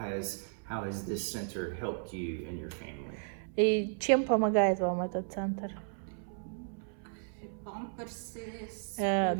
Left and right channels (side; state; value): left; silent; 55 dB below the other